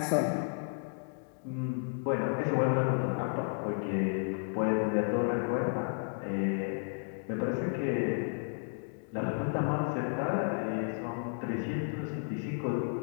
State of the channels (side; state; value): right; silent; digital silence